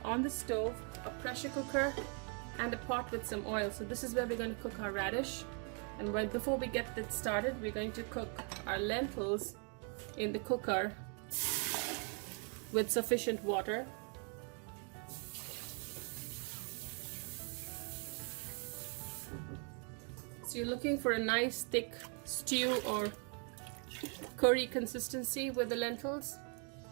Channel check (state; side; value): quieter; left; 38.9 dB